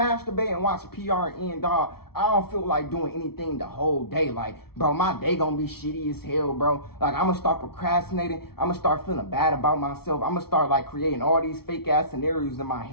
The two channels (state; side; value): late; right; 0.95 ms